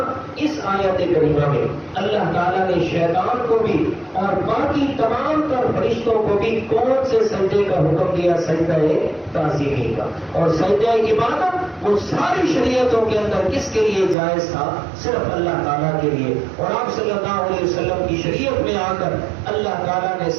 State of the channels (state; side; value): drops out; left; at 14.2 s